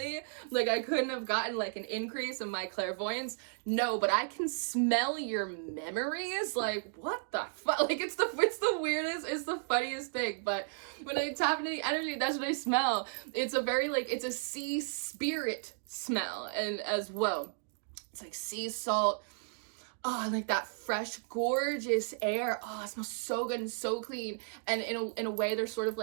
Like I couldn't have gotten like an increase in my clairvoyance? No, but I can smell your memories. Like, what the fuck? Like it's the weirdest, it's the funniest thing. But when I tap into the energy, that's what I smell. It's a very like, it's a sea spirit smell, and as well, it's like sea salt. Oh, like that fresh, gorgeous air. Oh, it smells so good and so clean. And in a way, there's sort of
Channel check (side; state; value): left; silent; digital silence